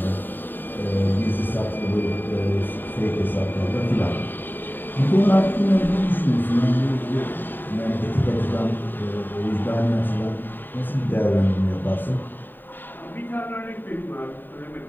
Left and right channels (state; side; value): late; right; 0.092 ms